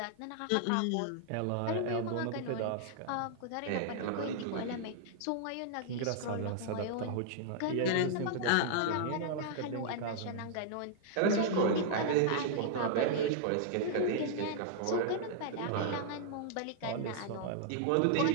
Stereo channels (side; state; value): both; different; correlation -0.01